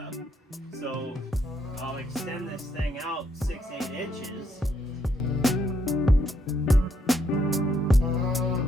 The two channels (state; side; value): normal; both; correlation 0.74